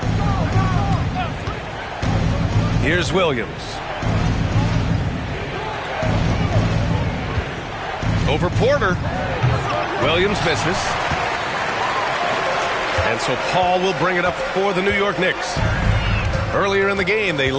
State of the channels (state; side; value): identical; both; correlation 1.00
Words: Here's Williams. Over Porter. Williams misses. And so Paul will bring it up for the New York Knicks. Earlier in the game, they